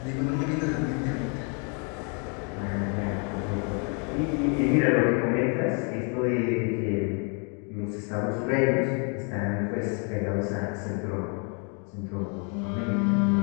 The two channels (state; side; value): quieter; right; 37.8 dB